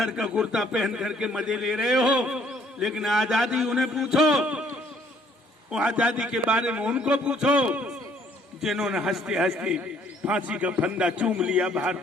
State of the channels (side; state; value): both; normal; correlation 0.62